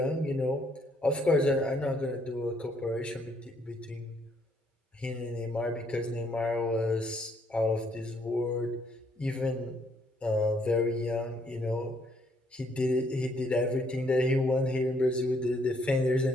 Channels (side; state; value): both; normal; correlation 0.69